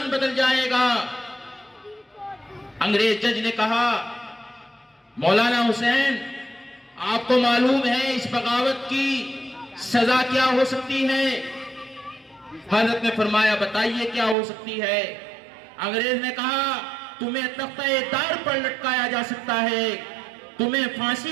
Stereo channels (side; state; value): left; drops out; at 14.4 s